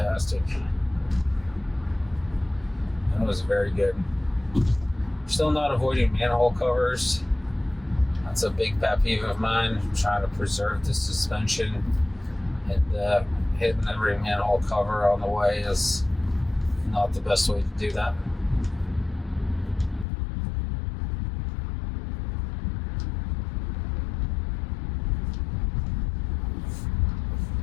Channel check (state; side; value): drops out; right; at 20.1 s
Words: That was very good. Still not avoiding manhole covers. That's a big pet peeve of mine. I'm trying to preserve the suspension, and hitting every manhole cover on the way is not the best way to do that.